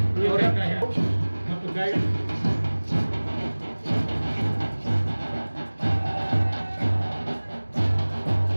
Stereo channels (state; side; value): inverted; both; correlation -1.00